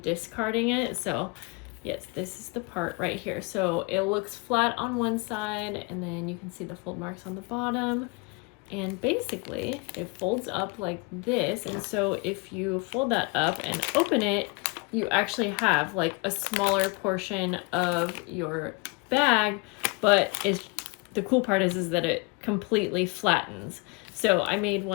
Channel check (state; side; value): quieter; right; 29.1 dB